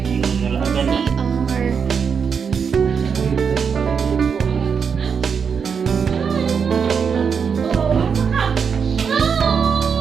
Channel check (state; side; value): quieter; left; 6.4 dB